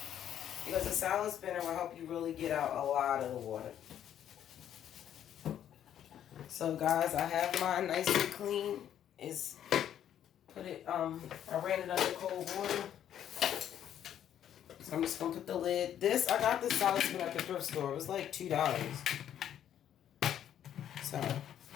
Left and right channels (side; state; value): right; quieter; 10.3 dB